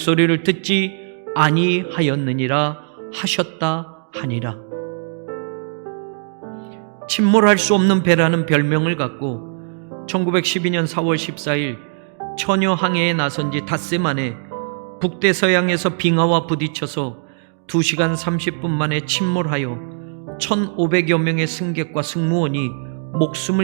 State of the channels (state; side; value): silent; left; 57 dB below the other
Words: 듣지 아니하였느니라 하셨다 하니라. 침몰할 수 없는 배라는 별명을 갖고 1912년 4월 14일 처녀 항해에 나선 지 닷새 만에 북대서양에서 빙하와 부딪혀서 2시간 30분 만에 침몰하여 1,500여 명의 승객과 승무원이